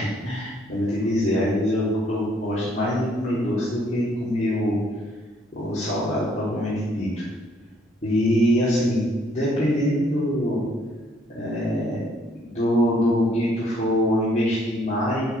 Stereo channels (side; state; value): both; normal; correlation 0.65